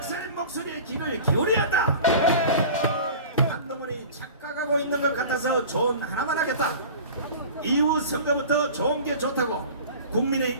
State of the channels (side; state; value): both; inverted; correlation -0.39